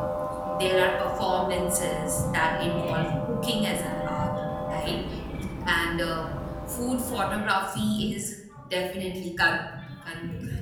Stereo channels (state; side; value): identical; both; correlation 1.00